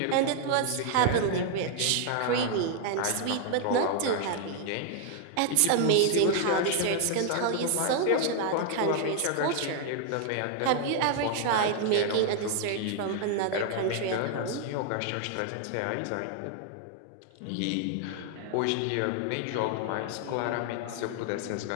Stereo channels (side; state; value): both; different; correlation 0.00